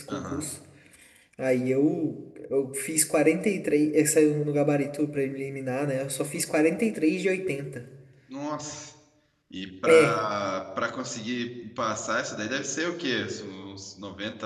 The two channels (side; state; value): both; identical; correlation 1.00